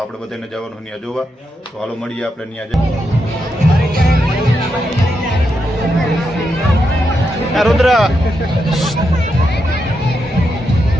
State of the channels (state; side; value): normal; both; correlation 0.84